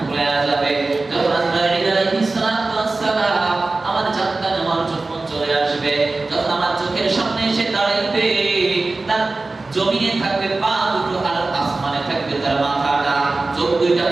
যাবে, যখন আজরাইল আলাইহিস সালাম আমার জানটা নেওয়ার জন্য চলে আসবে, যখন আমার চোখের সামনে এসে দাঁড়াইবে, তার জমিনে থাকবে পা দুটো আর আসমানে থাকবে তার মাথাটা, চোখ দুইটা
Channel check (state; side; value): quieter; left; 3.4 dB